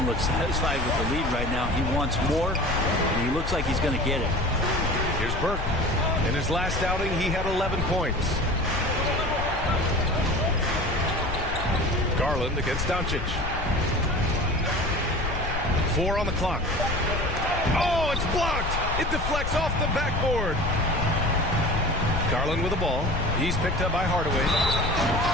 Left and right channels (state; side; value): noise; left; rumble, 4 dB below the sound